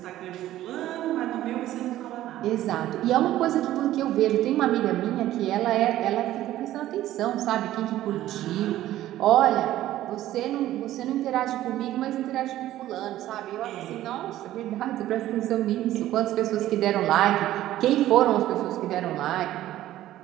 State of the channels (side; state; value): left; quieter; 14.0 dB